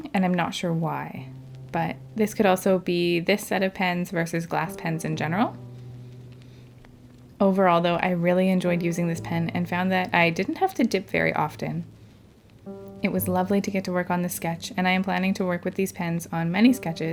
and I'm not sure why. But this could also be this set of pens versus glass pens in general. Overall, though, I really enjoyed using this pen and found that I didn't have to dip very often. It was lovely to get to work on this sketch, and I am planning to work with these pens on many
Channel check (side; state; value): both; identical; correlation 1.00